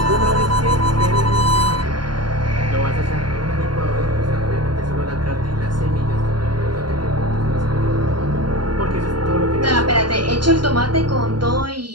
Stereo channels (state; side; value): late; left; 0.71 ms